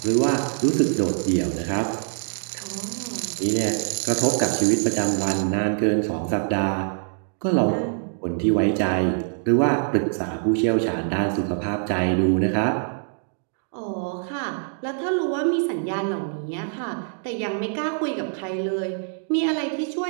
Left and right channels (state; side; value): silent; left; digital silence